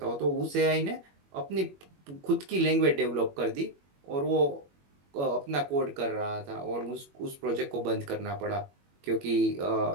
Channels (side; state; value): left; late; 21 ms